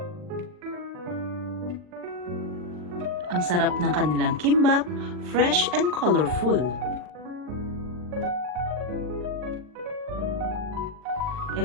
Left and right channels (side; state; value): left; late; 40 ms